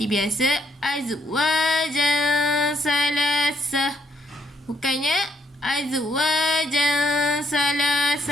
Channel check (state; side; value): normal; both; correlation 0.72